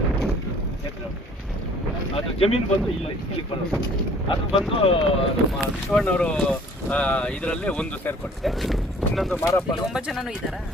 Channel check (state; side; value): normal; both; correlation 0.54